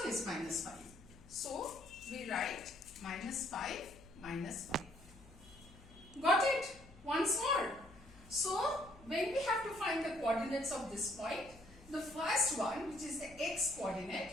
is minus 5. So we write minus 5, minus 5. Got it? Once more. So when we have to find the coordinates of this point, the first one, which is the x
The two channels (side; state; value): left; noise; hum, 21 dB below the sound